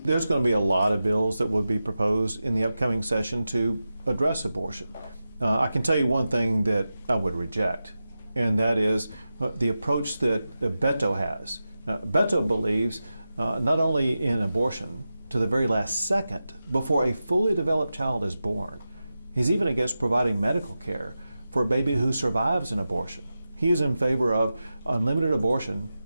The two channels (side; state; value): both; inverted; correlation -0.92